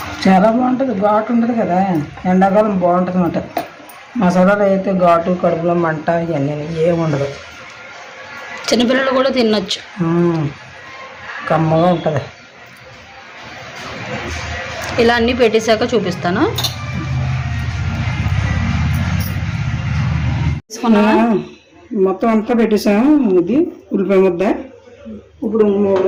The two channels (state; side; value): identical; both; correlation 1.00